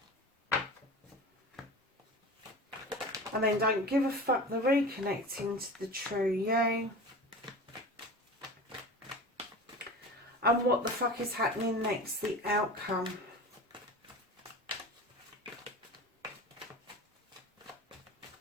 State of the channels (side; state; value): both; normal; correlation 0.34